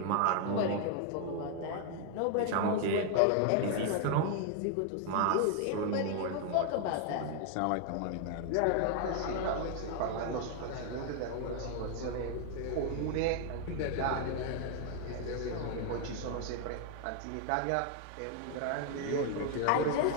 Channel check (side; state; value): both; different; correlation 0.00